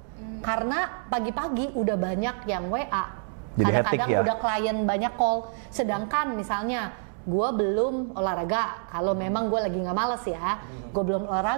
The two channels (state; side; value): silent; left; digital silence